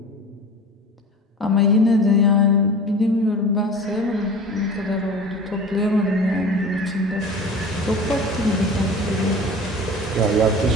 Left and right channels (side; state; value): both; normal; correlation 0.37